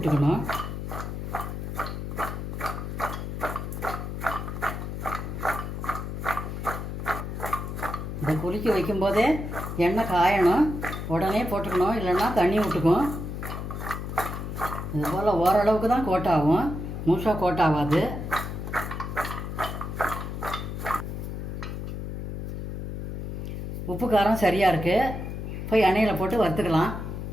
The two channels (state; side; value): noise; left; hum, 5 dB below the sound